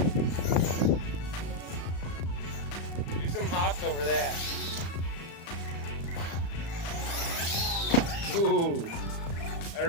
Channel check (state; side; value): late; right; 35 ms